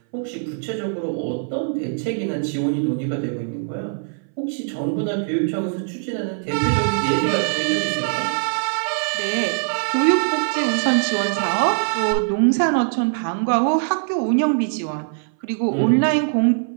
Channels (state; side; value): silent; left; 61 dB below the other